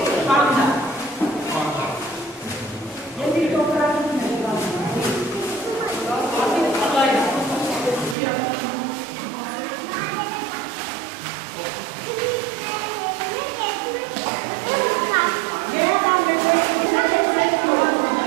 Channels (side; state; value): left; drops out; at 8.2 s